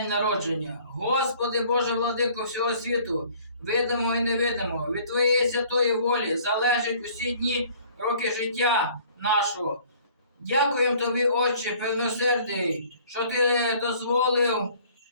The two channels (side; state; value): both; inverted; correlation -0.55